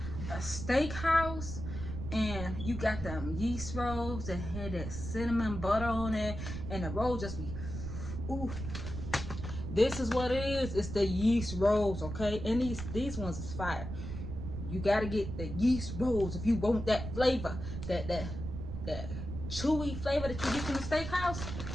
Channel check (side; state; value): right; noise; rumble, 6 dB below the sound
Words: a steakhouse and you got them yeast rolls that had that cinnamon butter on it, and the roll just be, ooh, this is what it is. It's the yeast rolls, okay? And these ones is fire. You gotta get the yeast rolls if you want that flavor, that chewy flavor that you get from the steakhouse.